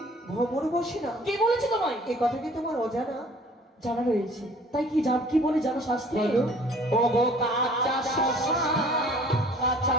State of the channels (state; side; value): normal; both; correlation 0.52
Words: ভ্রমণ বসে না কে বলেছে তোমায়? এই কথা কি তোমার অজানা? জানা রয়েছে, তাই কি কি বলে জানো শাস্ত্রে? বলো। ও গো কাঁচা শশা কাঁচা